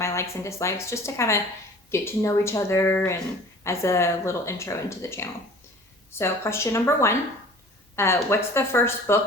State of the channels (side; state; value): both; normal; correlation 0.46